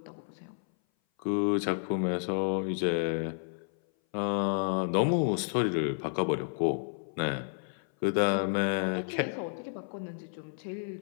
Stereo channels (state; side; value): silent; right; 57 dB below the other